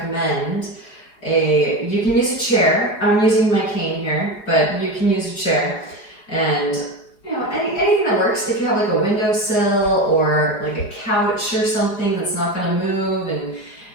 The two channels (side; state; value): right; late; 4.8 ms